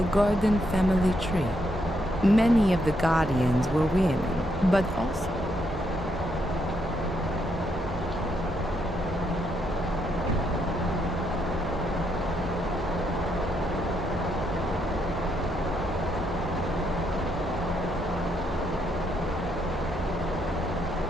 Gordon family tree. Many of the Guardians were women, but also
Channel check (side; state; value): both; normal; correlation 0.76